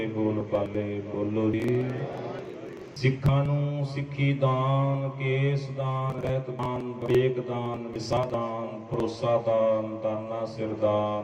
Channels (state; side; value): identical; both; correlation 1.00